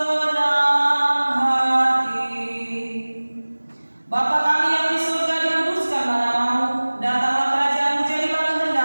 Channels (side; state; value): both; inverted; correlation -1.00